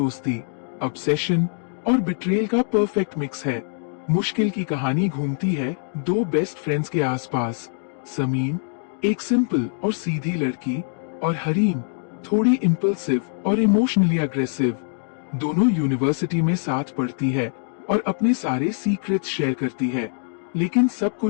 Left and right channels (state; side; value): silent; right; digital silence